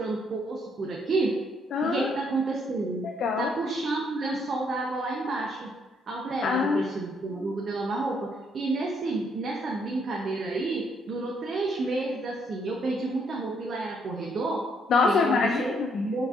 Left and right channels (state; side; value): normal; both; correlation 0.71